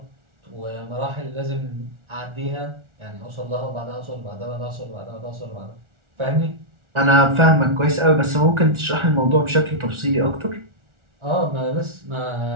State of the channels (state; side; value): late; left; 1.4 ms